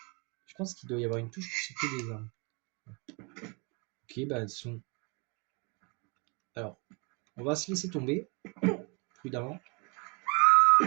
je pense qu'il doit y avoir une touche pour sauter des armes. Ok, bah elles sont. Alors, on va se laisser tomber, prudemment,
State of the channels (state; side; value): quieter; left; 33.9 dB